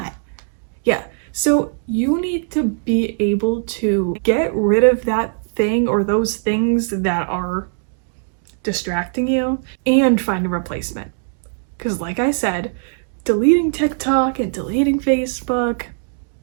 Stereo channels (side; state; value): left; silent; digital silence